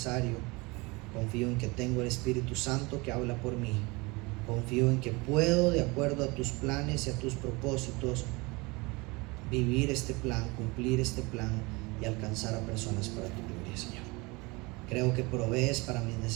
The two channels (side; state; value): left; quieter; 25.4 dB